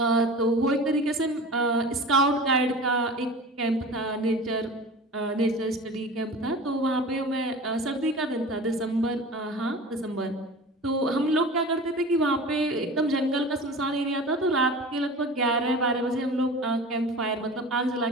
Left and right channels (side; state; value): both; normal; correlation 0.36